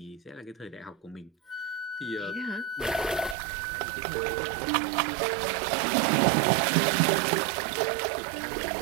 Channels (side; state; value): left; drops out; at 3.4 s